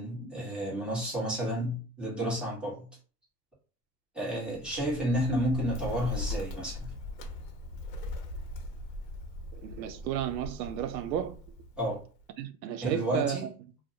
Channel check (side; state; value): both; normal; correlation 0.39